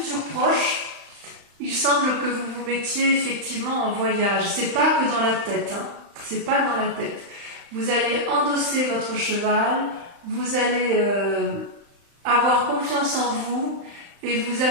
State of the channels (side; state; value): left; late; 35 ms